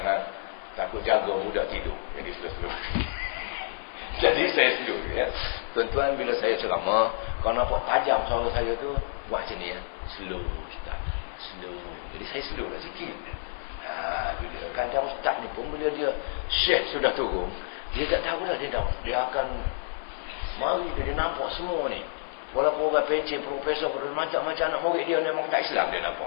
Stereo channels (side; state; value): right; silent; 59 dB below the other